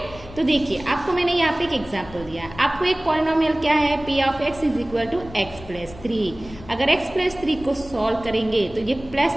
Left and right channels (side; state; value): left; noise; rumble, 18 dB below the sound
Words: तो देखिए आपको मैंने यहाँ पे एक एग्जाम्पल दिया है। आपको एक पॉलिनोमियल क्या है, p of x is equal to x plus 3। अगर x प्लस 3 को सॉल्व करेंगे तो ये प्लस